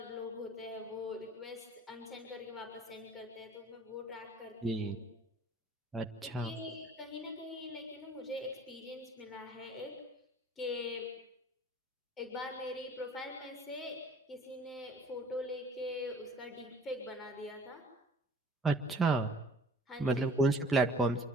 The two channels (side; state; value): both; normal; correlation 0.52